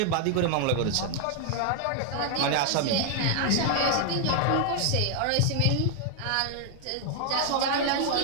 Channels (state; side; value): different; both; correlation 0.00